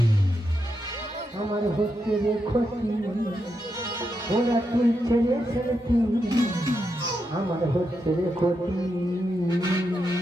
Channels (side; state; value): both; normal; correlation 0.84